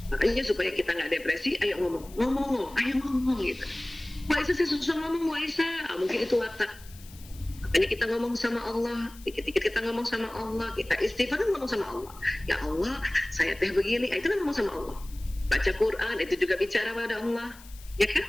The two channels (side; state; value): left; noise; hiss, 21 dB below the sound